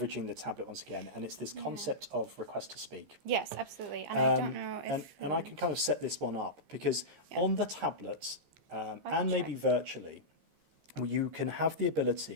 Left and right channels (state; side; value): late; left; 15 ms